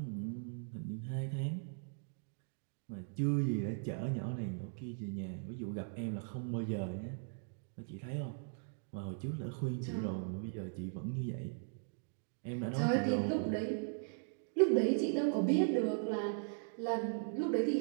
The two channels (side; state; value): left; silent; digital silence